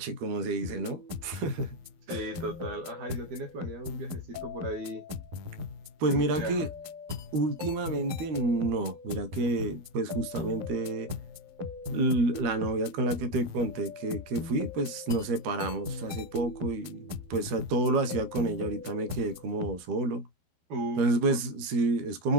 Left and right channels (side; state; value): left; late; 13 ms